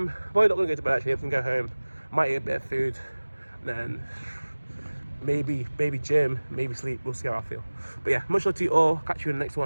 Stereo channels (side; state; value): both; inverted; correlation -1.00